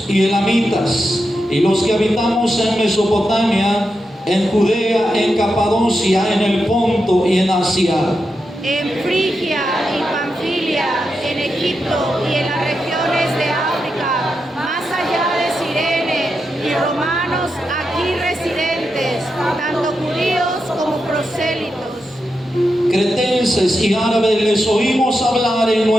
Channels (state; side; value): normal; both; correlation 0.87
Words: y elamitas, y los que habitamos en Mesopotamia, en Judea, en Capadocia, en el Ponto y en Asia, en Frigia y Panfilia, en Egipto y en las regiones de África, más allá de Cirene, y romanos aquí residentes, tanto judíos como prosélitos. cretenses y árabes, les oímos hablar en